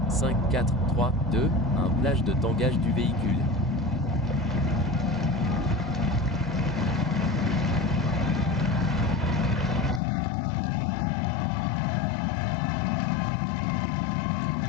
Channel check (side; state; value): right; drops out; at 10.0 s